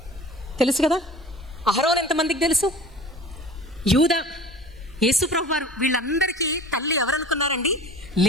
కదా, అహరోన్ ఎంతమందికి తెలుసు, యూదా, యేసుప్రభు వారు, వీళ్ళందరికీ తల్లి ఎవరనుకున్నారండి?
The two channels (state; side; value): normal; both; correlation 0.42